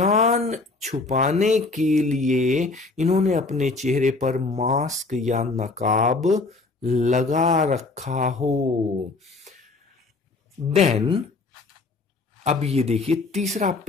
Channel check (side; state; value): right; quieter; 3.6 dB